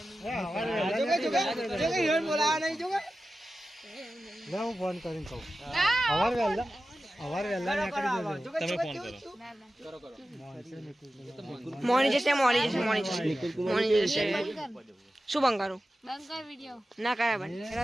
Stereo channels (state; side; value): normal; both; correlation 0.94